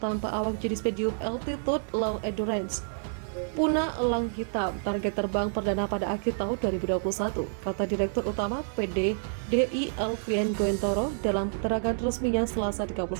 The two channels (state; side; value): silent; left; digital silence